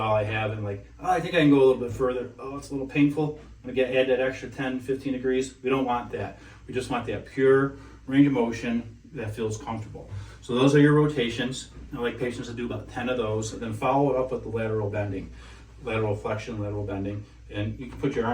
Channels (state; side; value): identical; both; correlation 1.00